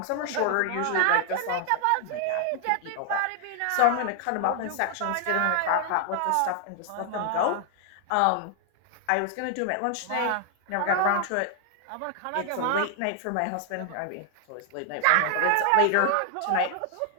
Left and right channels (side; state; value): both; different; correlation 0.00